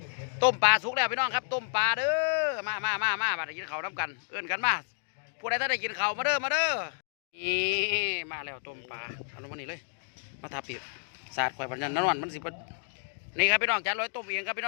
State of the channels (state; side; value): silent; right; digital silence